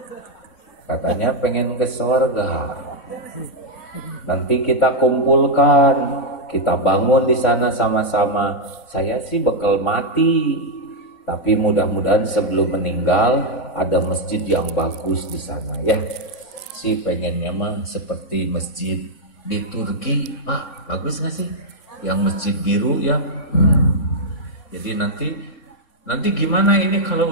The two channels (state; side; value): late; right; 3.6 ms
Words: Katanya pengen ke surga. Nanti kita kumpulkan, kita bangun di sana sama-sama. Saya sih bakal mati, tapi mudah-mudahan sebelum meninggal ada masjid yang bagus di sana ya. Si pengennya mah seperti masjid di Turki, Pak, bagus nggak sih? Yang masjid biru ya. Jadi nanti gimana ini